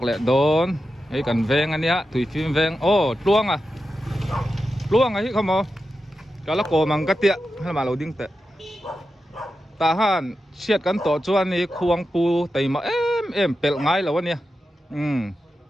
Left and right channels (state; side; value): normal; both; correlation 0.90